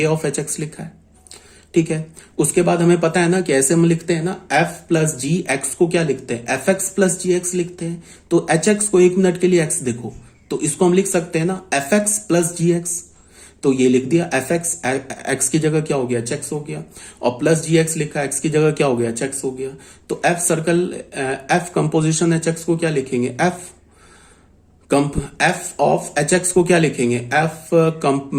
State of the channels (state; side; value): identical; both; correlation 1.00